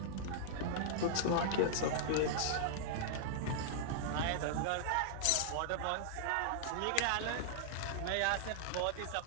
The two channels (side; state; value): both; different; correlation -0.01